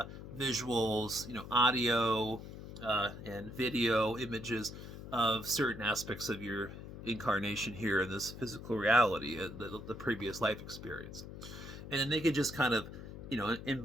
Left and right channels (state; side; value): noise; left; hum, 12 dB below the sound